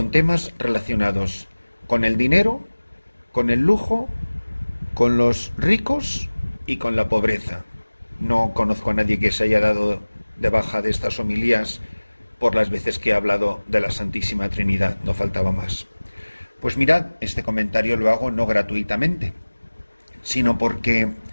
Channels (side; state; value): both; inverted; correlation -1.00